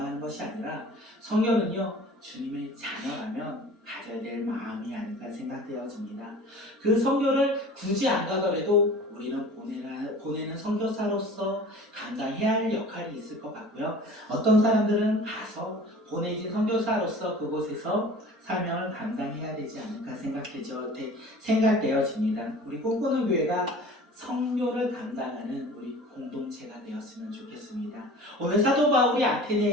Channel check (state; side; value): normal; both; correlation 0.42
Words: 것이 아니라 성경은요 주님의 자녀라면 가져야 될 마음이 아닐까 생각되어집니다. 그 선교를 굳이 안 가더라도 우리는 보내는 선교사로서 감당해야 할 역할이 있을 것 같고요. 어떤 사람들은 가서 보내진 선교사로서 그곳에서 사명을 감당해야 되지 않을까 생각되어집니다. 우리 꿈꾸는 교회가 선교를 감당하는 우리 공동체가 되었으면 좋겠습니다. 오늘 사도 바울이